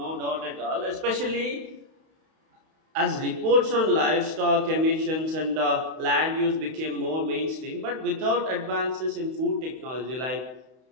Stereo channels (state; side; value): late; left; 31 ms